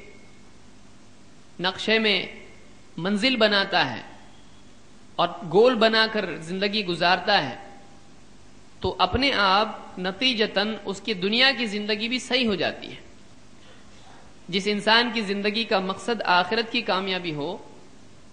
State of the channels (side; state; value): both; identical; correlation 1.00